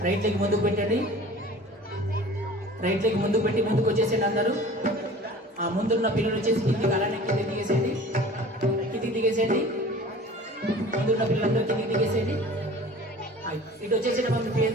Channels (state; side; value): normal; both; correlation 0.43